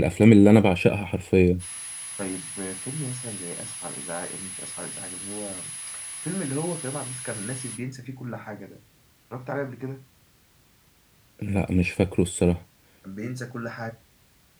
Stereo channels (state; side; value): identical; both; correlation 1.00